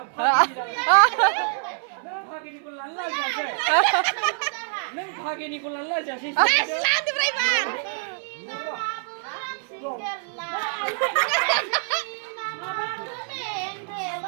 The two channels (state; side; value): silent; left; 58 dB below the other